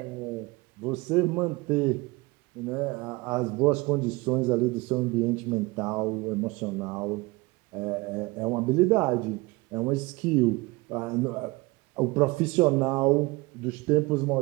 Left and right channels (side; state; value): left; quieter; 23.4 dB